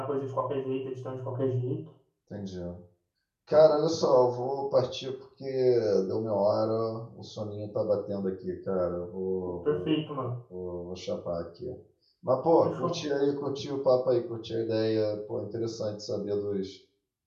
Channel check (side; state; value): both; identical; correlation 1.00